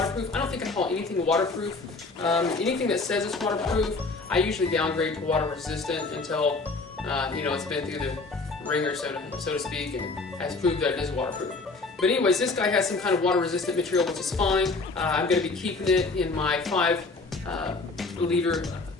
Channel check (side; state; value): right; quieter; 3.7 dB